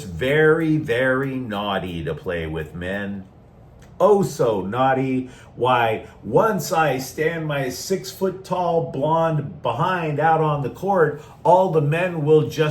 very, very naughty to play with men. Oh, so naughty. Why, once I stand my 6-foot-tall blonde behind out on the court, all the men will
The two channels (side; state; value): both; identical; correlation 1.00